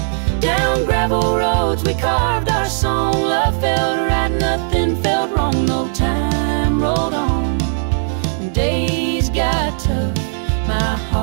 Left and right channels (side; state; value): left; silent; 61 dB below the other